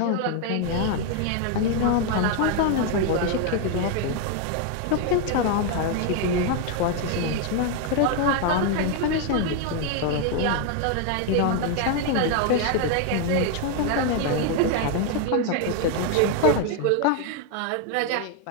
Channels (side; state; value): both; different; correlation 0.00